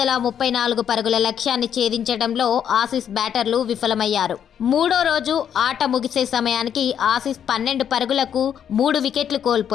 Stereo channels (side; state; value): right; quieter; 8.8 dB